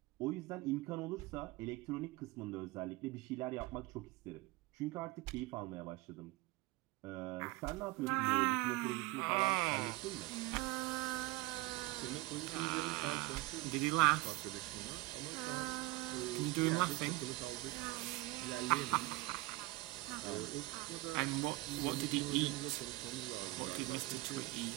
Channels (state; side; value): quieter; left; 21.1 dB